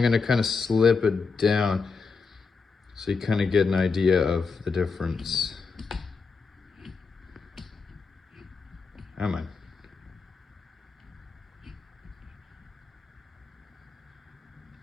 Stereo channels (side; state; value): right; quieter; 4.8 dB